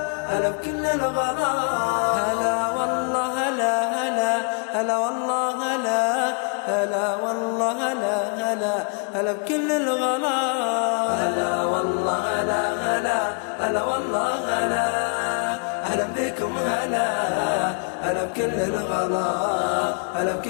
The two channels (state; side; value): quieter; right; 38.6 dB